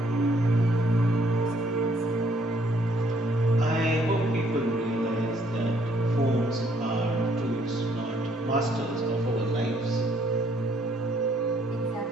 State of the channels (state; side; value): normal; both; correlation 0.66